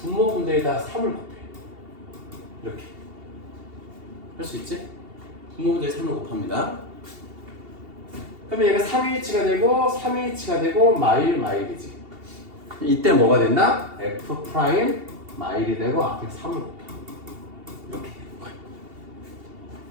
3을 곱해. 이렇게 할 수 있지? 분모분대에 3을 곱합니다. 그러면 얘가 3H가 되고 3H가 되고 마일이지. 이때 뭐가 된다? F 프라임 마일이 되고 앞에 3을 곱해. 이렇게 되는 거야.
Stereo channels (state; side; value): late; left; 2.8 ms